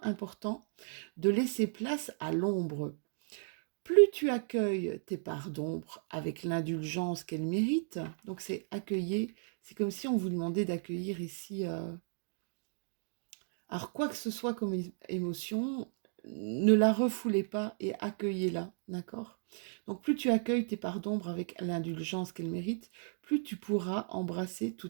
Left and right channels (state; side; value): silent; left; digital silence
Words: important de laisser place à l'ombre. Plus tu accueilles tes parts d'ombre avec l'indulgence qu'elles méritent, donc c'est accueillir, c'est comme si on vous demandait d'accueillir ici, alors quoi que ce soit comme émotion, ne la refoulez pas et accueillez-la, d'accord? Donc plus tu accueilles tes parts d'ombre avec l'indulgence qu'elles méritent, plus tu pourras embrasser